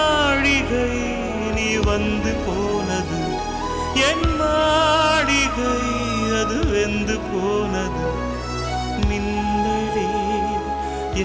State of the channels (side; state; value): both; identical; correlation 1.00